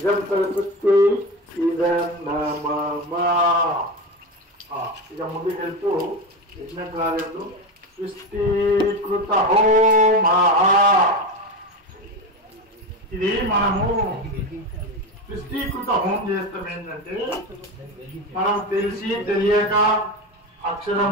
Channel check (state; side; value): normal; both; correlation 0.20